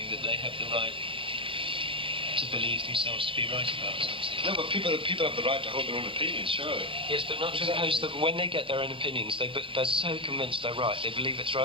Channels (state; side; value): late; left; 0.25 ms